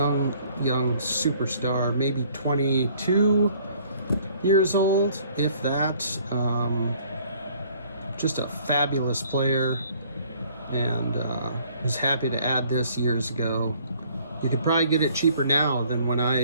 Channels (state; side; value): inverted; both; correlation -0.58